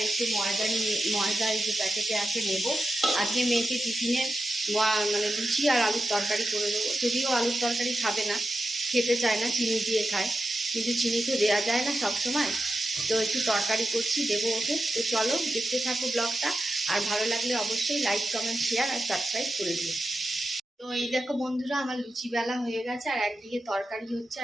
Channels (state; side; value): normal; both; correlation 0.90